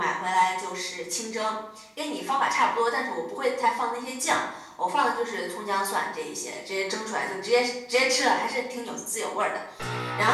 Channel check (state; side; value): identical; both; correlation 1.00